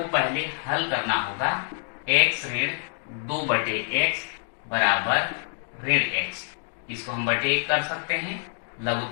पहले हल करना होगा। x ऋण 2 बटे x बराबर ऋण x, इसको हम बटे 1 कर सकते हैं।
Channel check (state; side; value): silent; right; digital silence